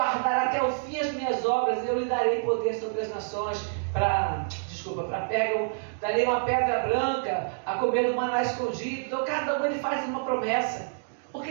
até o fim as minhas obras, eu lhe darei poder sobre as nações, para Pérgamo, darei uma pedra branca, a comer do maná escondido. Então cada um ele faz uma promessa,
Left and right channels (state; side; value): silent; left; digital silence